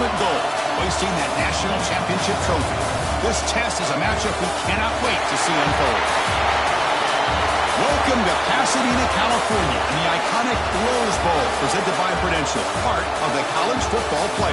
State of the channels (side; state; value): both; identical; correlation 1.00